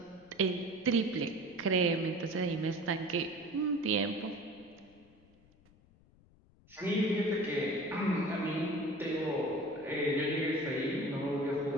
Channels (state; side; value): noise; left; rumble, 29 dB below the sound